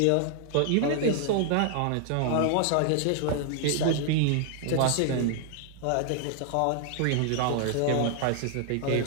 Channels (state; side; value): different; both; correlation 0.00